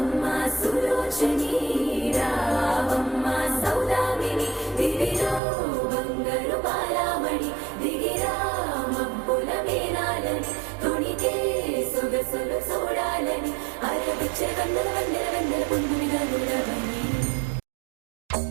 సులోచని రావమ్మ సౌదామిని దివిలో బంగారు బాలామణి దిగిరా మబ్బుల మేనాలని తొణికే సొగసులు చూడాలని అరవిచ్చే వందల వందల వందల పుంగునిగా నుడవని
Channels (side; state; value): left; drops out; at 5.4 s